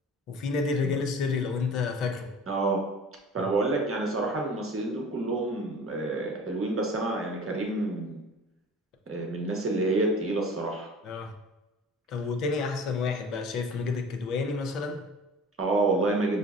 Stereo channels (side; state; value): both; normal; correlation 0.42